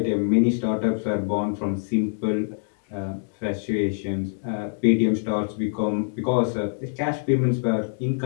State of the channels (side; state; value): right; silent; digital silence